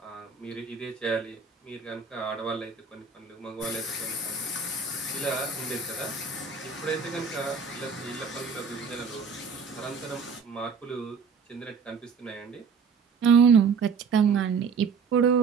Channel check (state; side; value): quieter; left; 5.4 dB